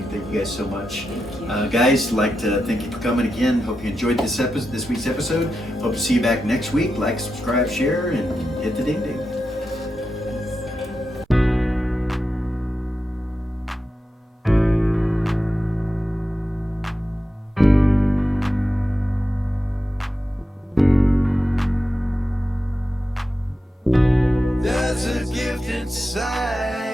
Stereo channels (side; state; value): both; normal; correlation 0.89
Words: Thank you guys so much. Guys, like to thank you for coming again. Hope you enjoyed this week's episode. Hope to see you back next week. Like, subscribe, share, and hit the ding ding. There's a gift